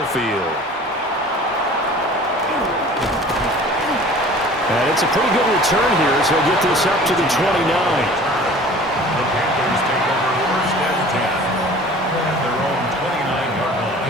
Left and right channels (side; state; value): both; normal; correlation 0.45